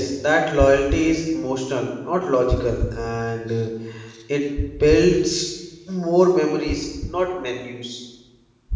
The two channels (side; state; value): both; identical; correlation 1.00